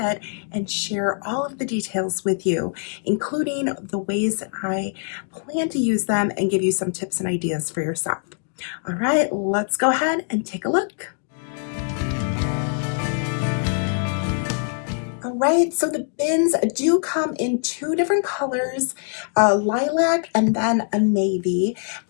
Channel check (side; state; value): right; silent; 60 dB below the other